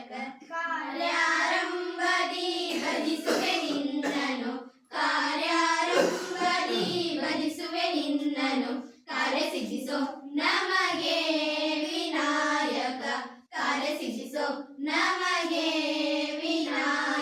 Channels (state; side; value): identical; both; correlation 1.00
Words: ಕಾರ್ಯಾರಂಭದಿ ಭಜಿಸುವೆ ನಿನ್ನನು ಕಾರ್ಯಾರಂಭದಿ ಭಜಿಸುವೆ ನಿನ್ನನು ಕಾರ್ಯ ಸಿದ್ಧಿಸೋ ನಮಗೆ ವಿನಾಯಕ ಕಾರ್ಯ ಸಿದ್ಧಿಸೋ ನಮಗೆ